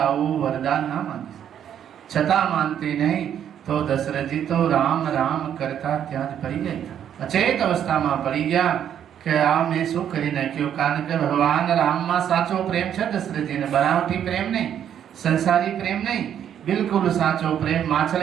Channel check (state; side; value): quieter; left; 9.5 dB